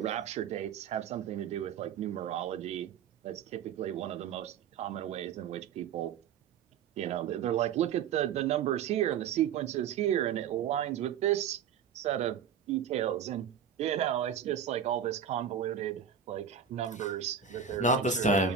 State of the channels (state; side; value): quieter; left; 7.7 dB